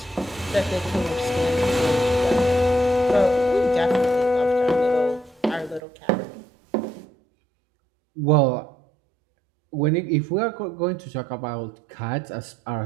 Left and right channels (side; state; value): left; drops out; at 5.8 s